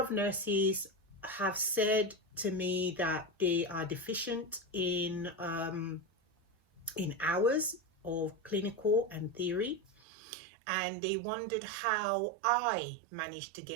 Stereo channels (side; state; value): left; drops out; at 10.0 s